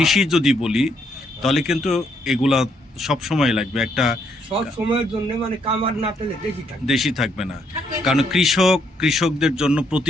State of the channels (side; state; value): both; normal; correlation 0.73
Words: যদি বলি তাহলে কিন্তু এগুলা সব সময় লাগবে, একটা সব সময়ের জন্য মানে কামার না পেলে দেখি থাকে, দেশি থাকবে না। কারণ কৃষকদের জন্য